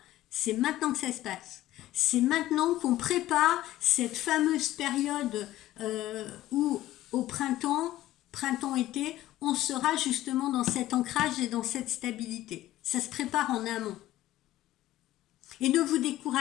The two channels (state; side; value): quieter; right; 14.9 dB